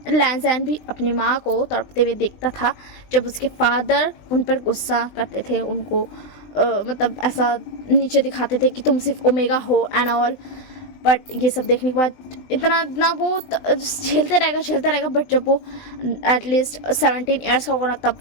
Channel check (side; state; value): right; late; 20 ms